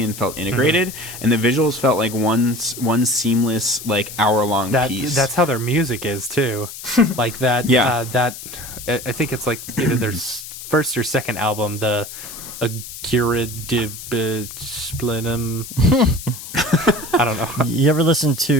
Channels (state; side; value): noise; left; hiss, 12 dB below the sound